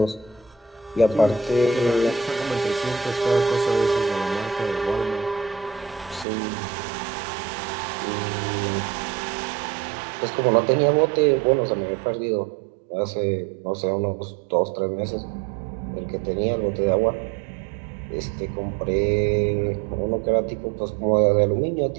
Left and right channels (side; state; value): left; drops out; at 6.2 s